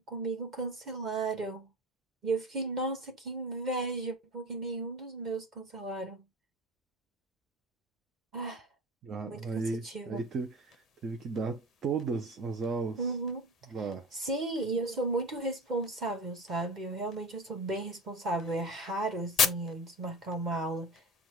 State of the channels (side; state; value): both; normal; correlation 0.31